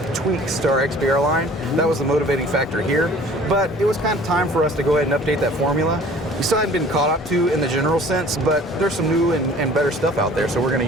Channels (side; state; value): both; normal; correlation 0.50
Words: tweaks to our XPR line. That was the motivating factor here, but it was kind of time for us to go ahead and update that formula. We still hadn't been caught up to in the general sense, but there's some new and better stuff out there, so we're going